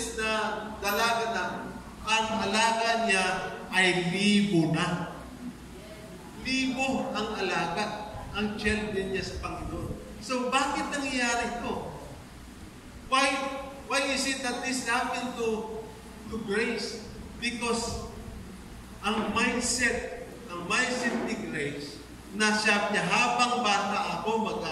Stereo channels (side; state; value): both; identical; correlation 1.00